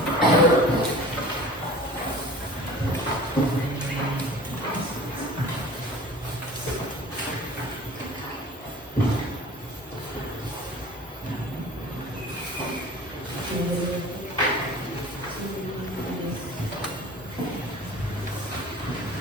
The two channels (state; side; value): normal; both; correlation 0.43